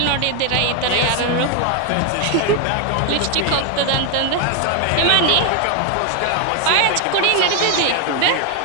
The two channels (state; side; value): different; both; correlation 0.01